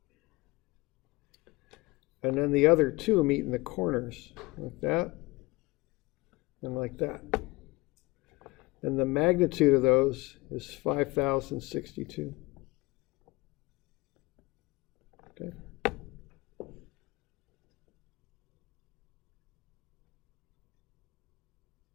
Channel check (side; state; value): right; quieter; 23.1 dB